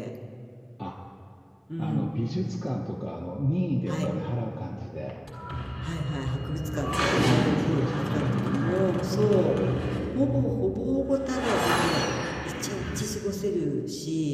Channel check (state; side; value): identical; both; correlation 1.00